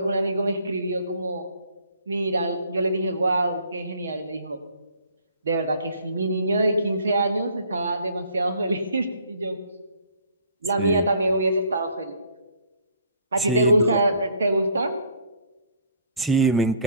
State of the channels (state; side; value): inverted; both; correlation -0.57